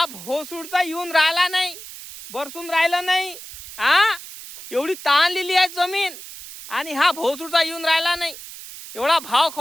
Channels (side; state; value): right; noise; hiss, 14 dB below the sound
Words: भोसूडचा येऊन राहिला नाही, बरसून राहिला नाही. हा, एवढी तहानलेली आहे जमीन आणि हा भोसूडचा येऊन राहिला नाही, एवढा भाव